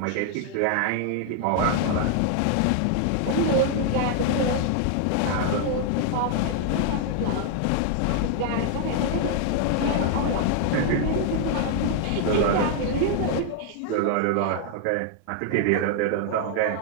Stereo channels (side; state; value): both; different; correlation 0.00